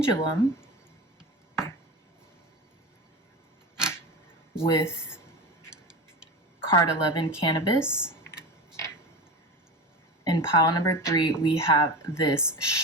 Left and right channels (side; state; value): both; normal; correlation 0.26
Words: with card 11, cannabis. In pile number 3, we have this